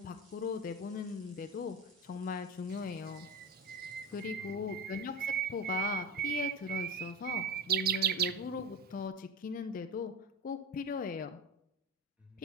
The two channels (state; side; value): normal; both; correlation 0.23